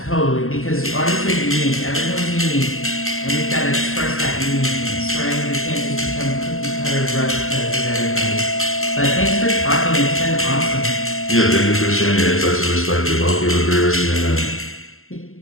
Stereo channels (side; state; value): right; late; 0.62 ms